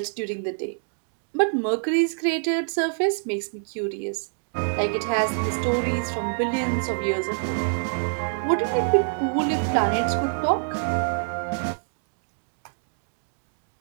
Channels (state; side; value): silent; left; digital silence